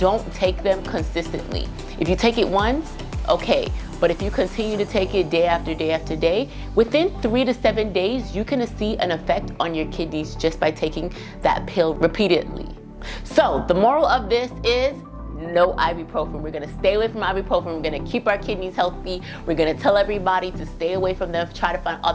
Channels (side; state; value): both; identical; correlation 1.00